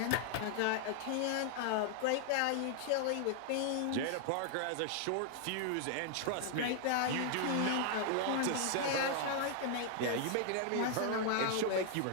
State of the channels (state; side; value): different; both; correlation 0.00